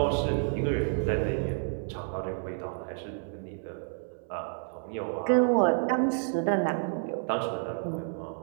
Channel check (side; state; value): left; silent; 58 dB below the other